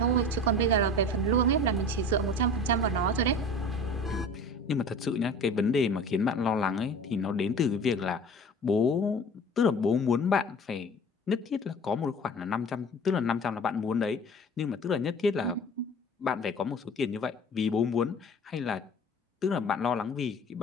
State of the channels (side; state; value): both; normal; correlation 0.41